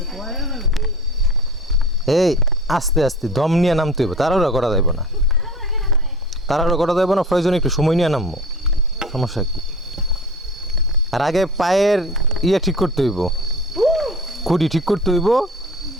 এই আস্তে আস্তে দম নিয়ে নামতে হইব, তাড়াহুড়া করা যাইব না। প্রয়োজনে একটু সময় নিয়ে নামবো, সমস্যা কি? আর আগে পায়ের ঠিক করতে হইব, খুঁটি ঠিক করতে হইব,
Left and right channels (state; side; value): normal; both; correlation 0.38